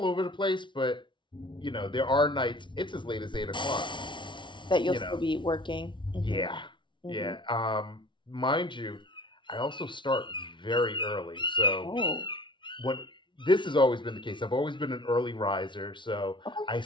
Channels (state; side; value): late; right; 0.24 ms